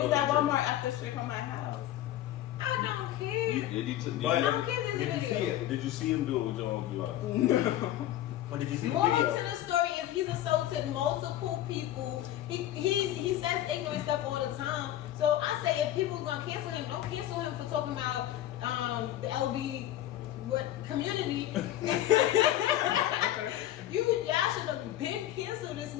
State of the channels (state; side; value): quieter; right; 13.1 dB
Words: was at Walmart up the street from my house. I don't care. But I don't care if did you it's a see video. it? Did you see him do it with your own blue eyes? Or did you see the More to video? the story is he's assaulted multiple people. He says ignorant stuff all the time. So I say if people are gonna cancel him, don't cancel him for talking about the LB community. Y'all should have been canceled this